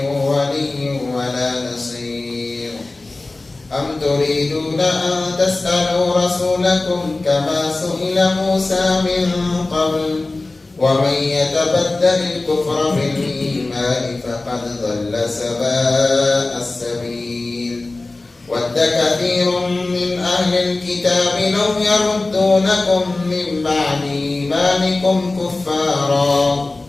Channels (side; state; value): right; quieter; 3.1 dB